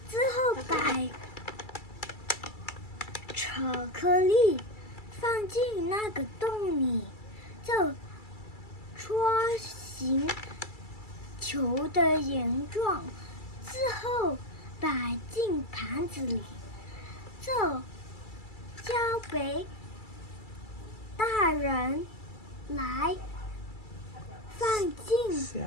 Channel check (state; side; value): late; right; 2.3 ms